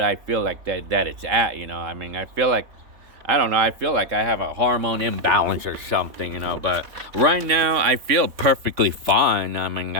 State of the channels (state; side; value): late; left; 3.6 ms